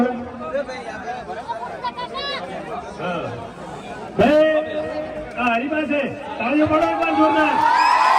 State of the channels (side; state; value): both; identical; correlation 1.00